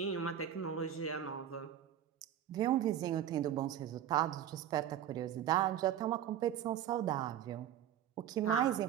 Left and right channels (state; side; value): quieter; left; 10.3 dB